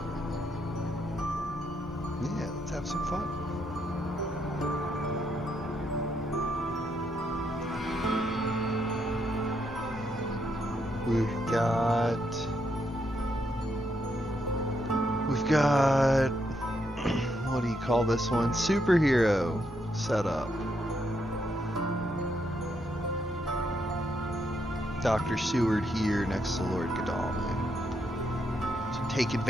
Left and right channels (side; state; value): both; normal; correlation 0.78